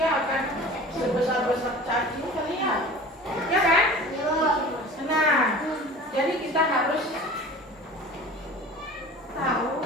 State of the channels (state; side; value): normal; both; correlation 0.40